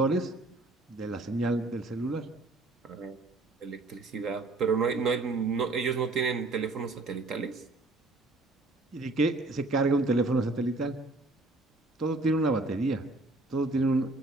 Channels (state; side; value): quieter; left; 3.1 dB